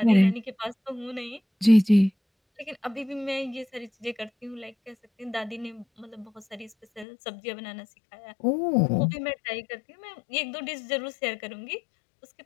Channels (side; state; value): right; drops out; at 7.1 s